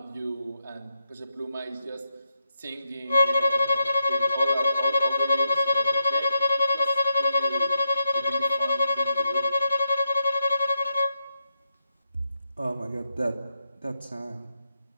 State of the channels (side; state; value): both; inverted; correlation -0.85